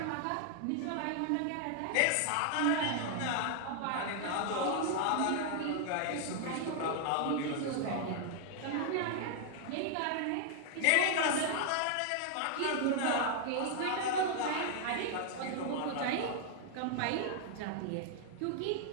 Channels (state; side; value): different; both; correlation 0.00